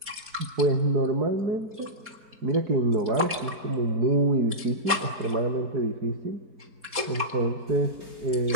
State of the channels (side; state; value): left; late; 4.2 ms